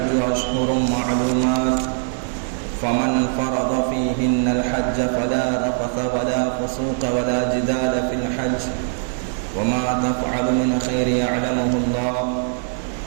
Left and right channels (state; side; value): silent; left; digital silence